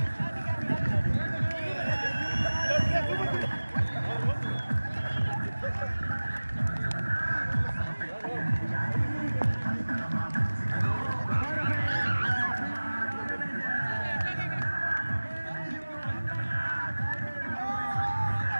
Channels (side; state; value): both; inverted; correlation -1.00